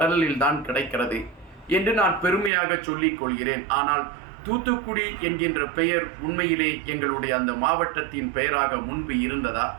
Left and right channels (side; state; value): left; drops out; at 2.5 s